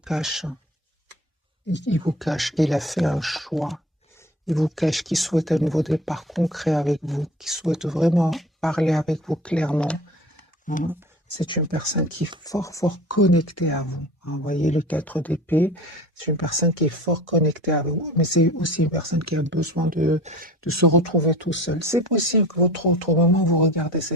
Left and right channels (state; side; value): normal; both; correlation 0.39